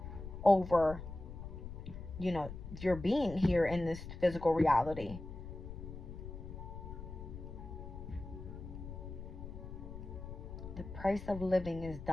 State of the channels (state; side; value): noise; left; rumble, 10 dB below the sound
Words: over, you know, your being here in this physical reality. The price of living is